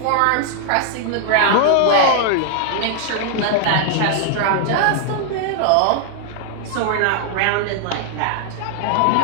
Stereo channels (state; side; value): different; both; correlation 0.00